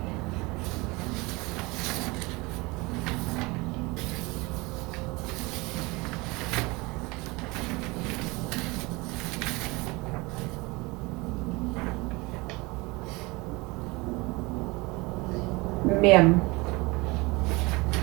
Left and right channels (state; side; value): quieter; left; 24.4 dB